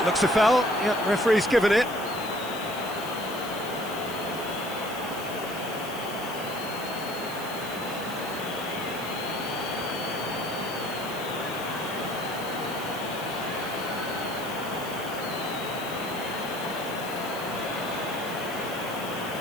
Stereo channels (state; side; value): noise; left; hiss, 13 dB below the sound